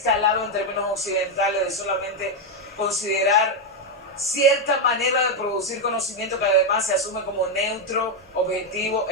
en términos occidentales de solamente considerar cierta manera de producir conocimiento que además se asume como neutro, objetivo,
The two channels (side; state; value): both; normal; correlation 0.03